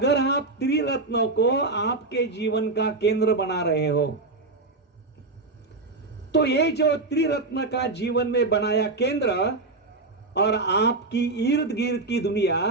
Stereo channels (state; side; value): quieter; left; 3.4 dB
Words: आप त्रिरत्नों को आपके जीवन का केंद्र बना रहे हो, तो ये जो त्रिरत्न का जीवन में बनाया केंद्र और आपकी इर्द गिर्द की दुनिया,